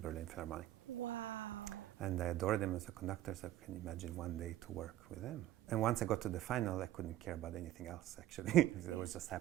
Philharmonic. Wow. And I adored him as a conductor, so I can imagine one day to work with him. And once I got to the final, I couldn't care about anything else, actually. I was just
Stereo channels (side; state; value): left; quieter; 13.8 dB